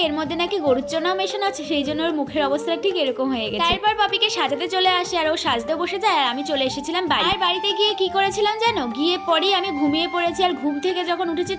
এর মধ্যে নাকি গরুর চনাও মেশানো আছে, সেই জন্য ওর মুখের অবস্থা ঠিক এরকম হয়ে গেছে। তারপর পপিকে সাজাতে চলে আসে আর ও সাজতে বসে যায়, আর আমি চলে এসেছিলাম বাড়ি। আর বাড়িতে গিয়ে কি করেছিলাম জানো, গিয়ে পরেই আমি ঘুমিয়ে পড়েছি। আর ঘুম থেকে যখন উঠেছি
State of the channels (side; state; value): both; identical; correlation 1.00